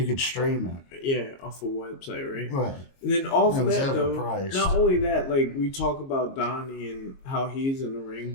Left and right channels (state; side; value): late; right; 22 ms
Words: could stream it. Yeah, off a website, right? Right. And then off of that, overpriced. Not only that, like, we talk about Donnie and how he's in the ring,